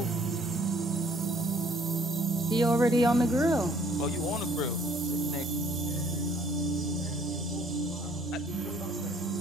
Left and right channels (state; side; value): normal; both; correlation 0.60